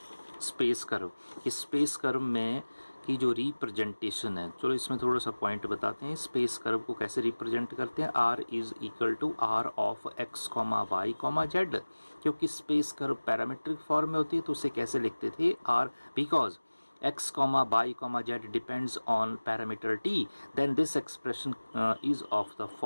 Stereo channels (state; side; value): inverted; both; correlation -1.00